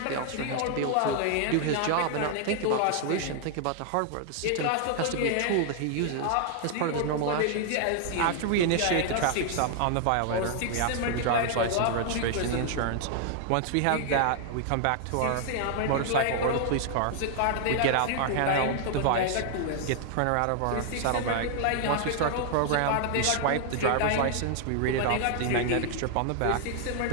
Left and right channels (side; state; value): both; different; correlation 0.00